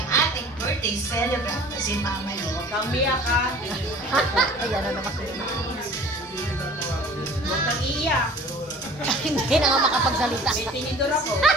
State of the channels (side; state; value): both; normal; correlation 0.46